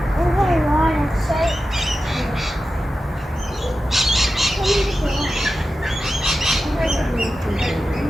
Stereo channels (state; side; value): normal; both; correlation 0.92